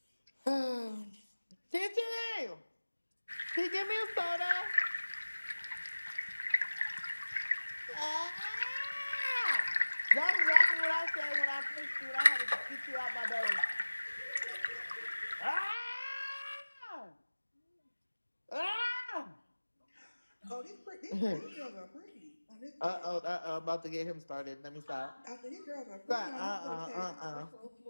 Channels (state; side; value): inverted; both; correlation -1.00